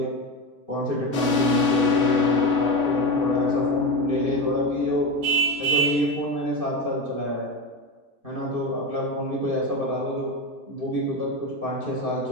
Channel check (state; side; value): late; left; 2.4 ms